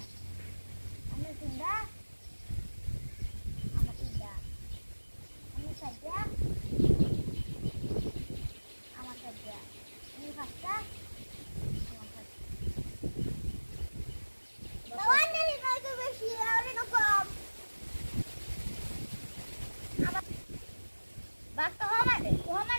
আমি তিনটা আমার তিনটা আমি সাজা আমার সাজা আমি পাঁচটা আমার পাঁচটা বাঘ তো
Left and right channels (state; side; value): inverted; both; correlation -1.00